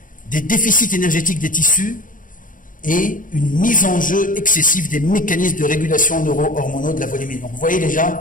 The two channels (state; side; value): late; right; 0.39 ms